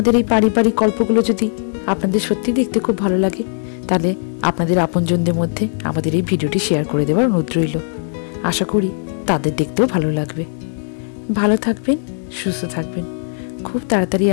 এই পারিবারিক গল্পগুলো যদি আপনাদের সত্যি দেখতে খুব ভালো লাগে, তাহলে আপনাদের আপনজনদের মধ্যে আমাদের এই ভিডিওটি শেয়ার করে দেওয়ার অনুরোধ রইল। আশা করি তাদের দেখতেও ভালো লাগবে। ভালো থাকবেন, সুস্থ থাকবেন। খুব তাড়াতাড়ি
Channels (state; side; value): silent; right; 67 dB below the other